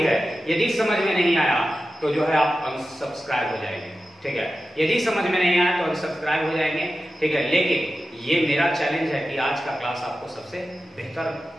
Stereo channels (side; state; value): both; normal; correlation 0.93